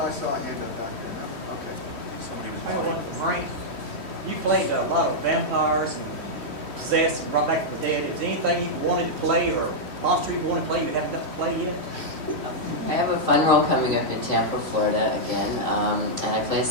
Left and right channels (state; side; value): late; left; 3.1 ms